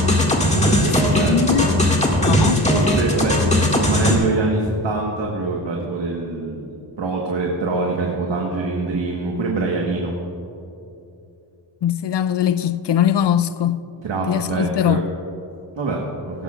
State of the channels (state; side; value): normal; both; correlation 0.31